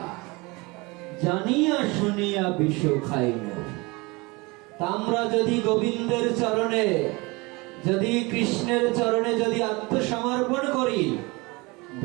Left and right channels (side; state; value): left; quieter; 25.2 dB